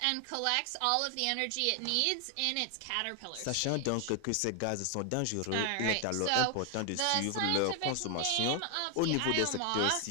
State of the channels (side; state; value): both; different; correlation 0.00